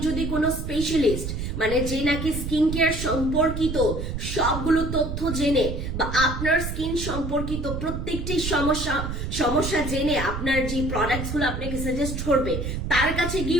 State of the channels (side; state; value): right; noise; rumble, 4 dB below the sound